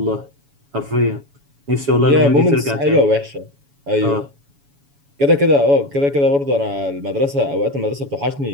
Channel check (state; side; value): late; left; 7.1 ms